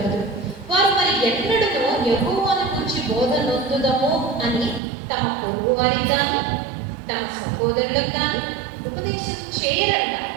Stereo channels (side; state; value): left; drops out; at 4.8 s